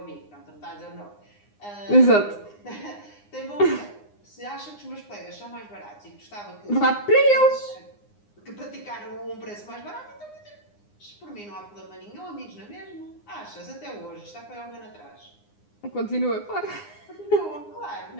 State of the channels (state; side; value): late; right; 9.7 ms